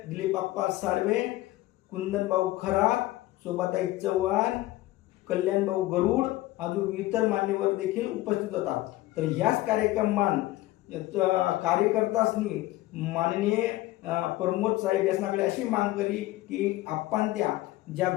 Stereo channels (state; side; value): quieter; right; 17.2 dB